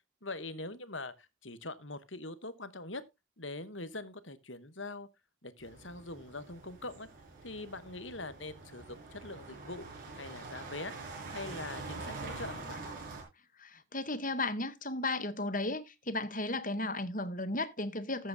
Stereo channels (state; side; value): normal; both; correlation 0.07